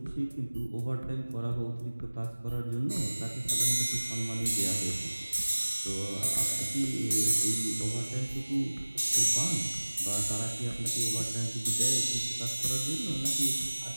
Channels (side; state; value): both; inverted; correlation -1.00